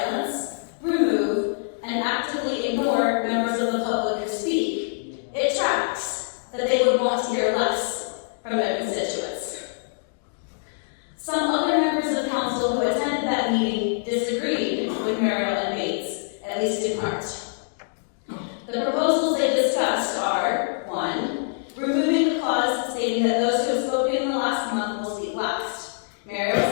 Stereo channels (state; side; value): silent; right; digital silence